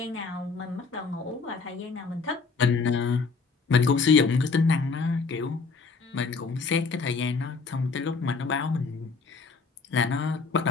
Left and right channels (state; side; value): quieter; right; 4.6 dB